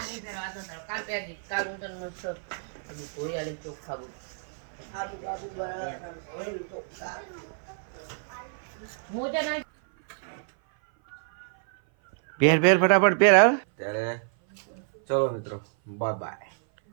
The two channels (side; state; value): left; silent; 56 dB below the other